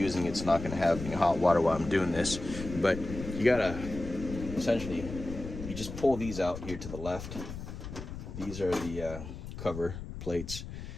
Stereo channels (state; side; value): noise; left; rumble, 9 dB below the sound